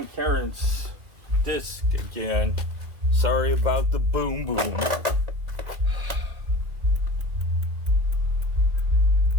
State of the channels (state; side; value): late; left; 2.2 ms